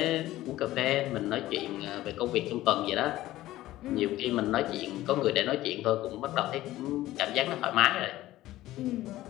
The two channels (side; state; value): right; quieter; 15.7 dB